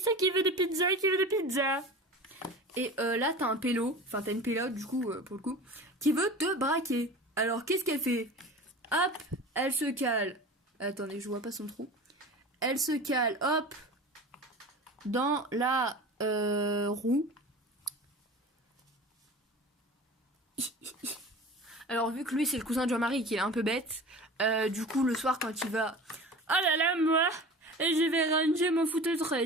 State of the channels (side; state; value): both; normal; correlation 0.36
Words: qui veut des pizzas, qui veut des pizzas. Et là t'as un pélo, enfin t'as une pélote du coup, pour le coup, qui veut te braquer. Alors qu'est-ce qu'elle fait? Hop, elle se cale. Attendez, je vois pas son trou. Elle se cale, hop, dans la roue. Alors vu que lui c'est le cousin de Jean-Marie qui est un peu bête, du coup le soir quand il va... Oh là là moi, et je vais ranger mon food